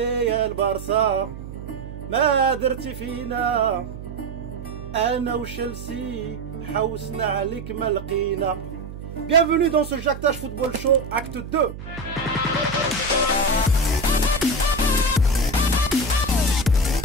البارسا ما درتي فينا انا وشلسي حوسنا عليك ما لقينا. Bienvenue dans ce Jactage Football Show, acte 2.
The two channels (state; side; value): noise; right; hum, 11 dB below the sound